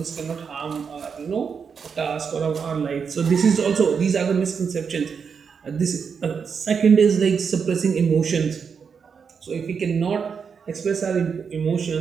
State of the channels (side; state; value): left; quieter; 6.2 dB